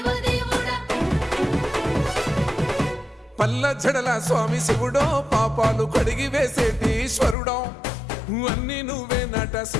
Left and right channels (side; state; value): right; drops out; at 7.4 s